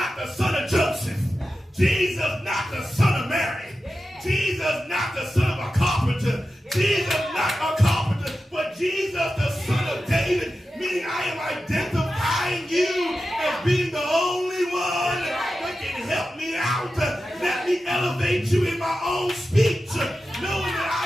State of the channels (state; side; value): normal; both; correlation 0.92